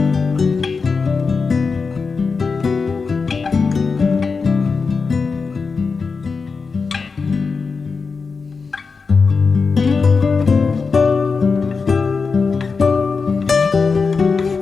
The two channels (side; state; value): right; quieter; 4.8 dB